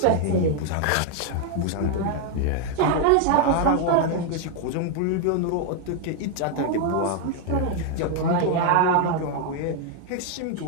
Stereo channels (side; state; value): both; different; correlation 0.00